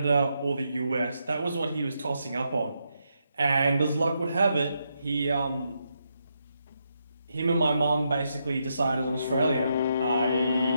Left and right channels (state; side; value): inverted; both; correlation -0.81